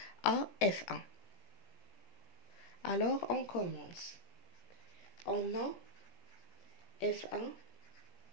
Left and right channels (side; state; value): right; late; 17 ms